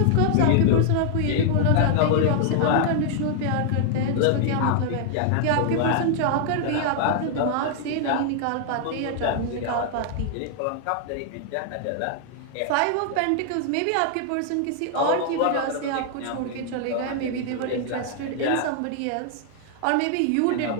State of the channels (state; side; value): different; both; correlation 0.00